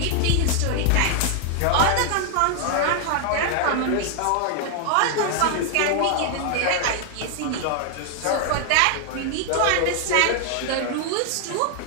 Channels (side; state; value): both; different; correlation 0.00